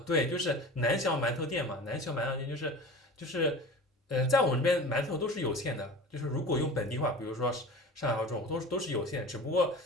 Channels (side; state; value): both; normal; correlation 0.36